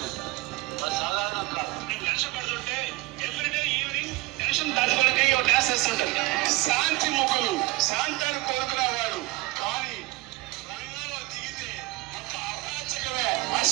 వాళ్ళు సాధారణంగా నేను కష్టపడుతుంటే ఎవ్రీడే ఈవినింగ్ టెన్షన్ తట్టుకోవడానికి డ్యాన్స్ వేస్తుంటారు. శాంతి ముఖులు, శాంతాన్ని కోరుకునేవాడు. కానీ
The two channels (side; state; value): left; quieter; 21.4 dB